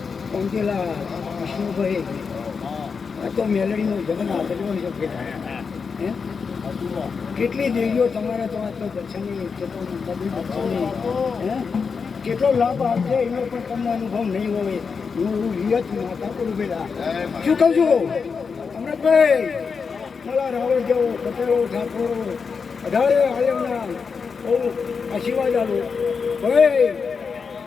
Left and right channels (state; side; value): quieter; right; 5.5 dB